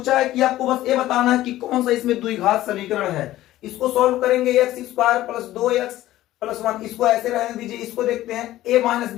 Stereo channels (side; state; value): right; quieter; 15.0 dB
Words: है कि आपको बस ये बताना है कि कौन सा इसमें द्विघात समीकरण है, इसको सॉल्व करेंगे, x² + 2x + 1, इसको ऐसे रहने दीजिए, इसको देखते हैं a -